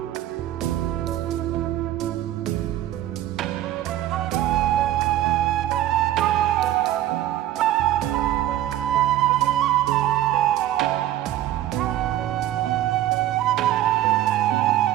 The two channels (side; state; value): left; quieter; 13.2 dB